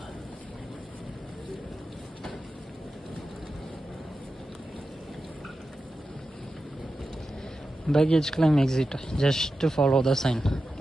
Baggage claim exit, just follow the sign.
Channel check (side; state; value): both; normal; correlation 0.91